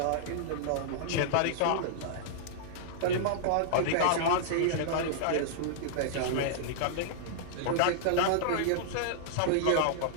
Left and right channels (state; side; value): different; both; correlation -0.02